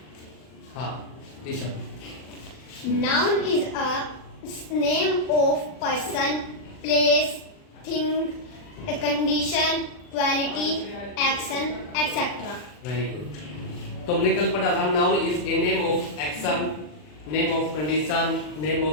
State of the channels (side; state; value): right; late; 40 ms